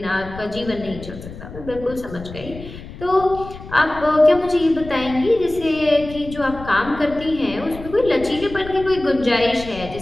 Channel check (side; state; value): left; noise; rumble, 14 dB below the sound